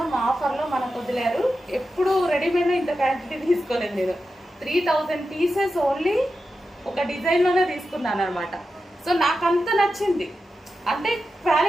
ఆఫర్లో మనకు వదిలేరు. ఎప్పుడు రెడీమేడ్లో ఇంత క్వాంటిటీ తీసుకోలేదు నేను. 3000 పీసెస్ ఓన్లీ ఒక డిజైన్లోనే తీసుకున్నాను అనమాట. సో నాకు అంత నచ్చింది. అంటే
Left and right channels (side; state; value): both; normal; correlation 0.90